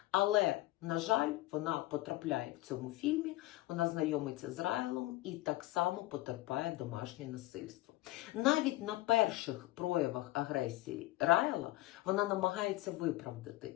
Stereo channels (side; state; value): right; quieter; 18.1 dB